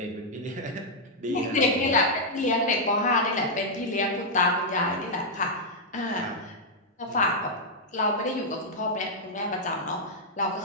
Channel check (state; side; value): normal; both; correlation -0.05